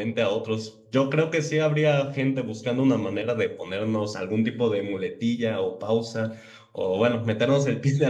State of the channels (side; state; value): both; identical; correlation 1.00